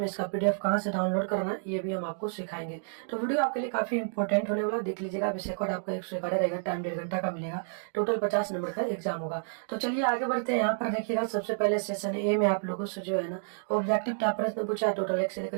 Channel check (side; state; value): left; silent; digital silence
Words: इसका पीडीएफ कहाँ से डाउनलोड करना है ये भी हम आपको सिखाएंगे। तो वीडियो आपके लिए काफी इंपॉर्टेंट होने वाला, देख लीजिएगा। विषय कोड आपका 111 रहेगा, टाइम 1.5 घंटा का मिलेगा, टोटल 50 नंबर का एग्जाम होगा। तो चलिए आगे बढ़ते हैं। यहाँ पर देखिएगा, सबसे पहले सेशन ए में आप लोगों से जो है ना ऑब्जेक्टिव टाइप प्रश्न पूछा है। टोटल 1 से लेकर